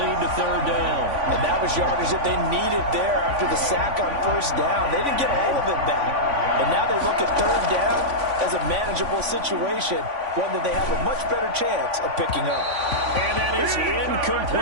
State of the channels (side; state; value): left; late; 3.5 ms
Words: to third down. And that was yardage that they needed there after the sack on first down. They didn't get all of it back. And now they look at third down as a manageable situation, one that they have a much better chance of picking up. And that is